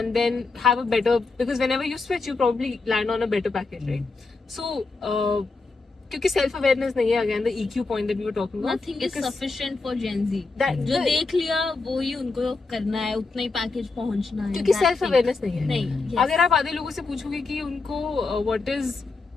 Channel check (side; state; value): right; quieter; 3.9 dB